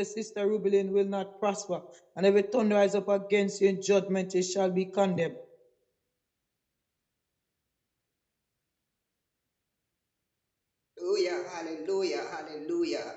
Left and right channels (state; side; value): identical; both; correlation 1.00